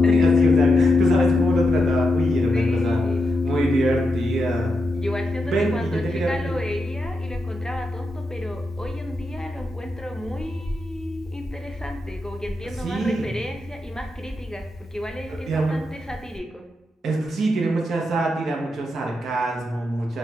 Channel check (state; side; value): normal; both; correlation 0.86